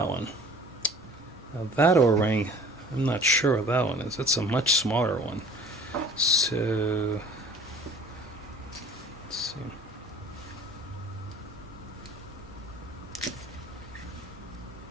one. Now that O-ring, I'm not sure what that one is. It's a much smaller one. So let's see.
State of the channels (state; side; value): normal; both; correlation 0.47